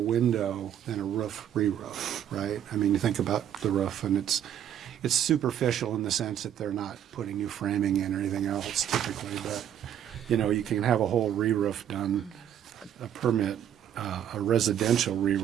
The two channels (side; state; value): left; quieter; 10.1 dB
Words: window than a roof re-roof, right? I mean, you think about the roof, and it's superficial in the sense that they're not putting new framing in or anything else typically, but, you can have a whole re-roof done, a permit a residential